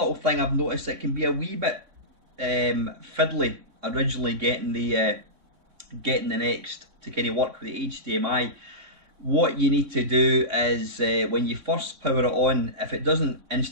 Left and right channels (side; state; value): left; late; 3.6 ms